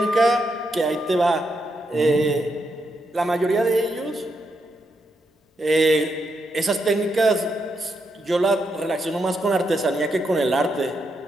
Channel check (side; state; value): both; normal; correlation 0.81